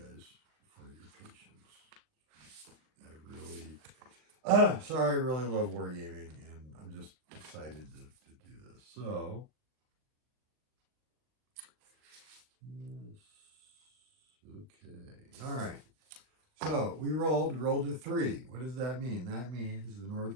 guys for your patience. I really, sorry, I really love wargaming, and I'm just excited to do this. So, yes, okay, all right. So we rolled a 3. What does that mean? That means the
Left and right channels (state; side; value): late; left; 39 ms